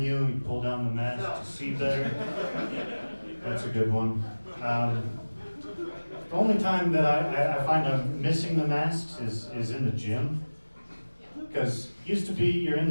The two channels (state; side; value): inverted; both; correlation -1.00